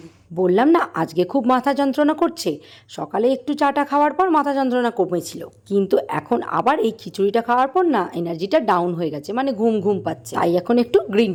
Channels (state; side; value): identical; both; correlation 1.00